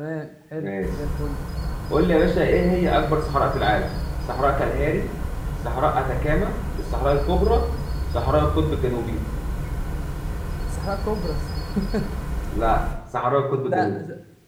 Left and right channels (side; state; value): both; identical; correlation 1.00